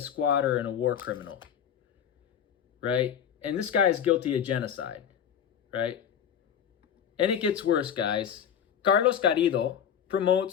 squatter and a war criminal, right? And this guy is guilty of genocide, right? And it gets worse, guys. Carlos Garrido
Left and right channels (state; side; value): quieter; right; 8.6 dB